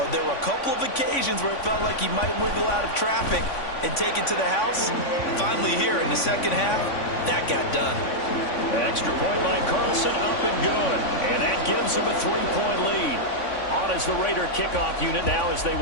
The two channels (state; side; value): late; right; 3.5 ms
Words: there were a couple of occasions where it felt like he might wiggle out of traffic and take it to the house. Finally here in the second half, that got done. Extra point by Carlson, up and good. And that gives him a 3-point lead. On as the Raider kickoff unit now as they